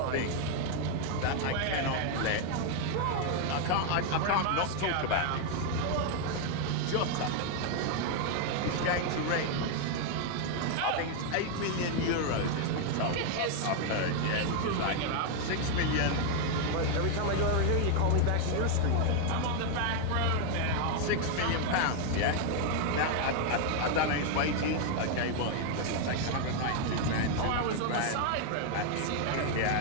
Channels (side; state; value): both; different; correlation 0.00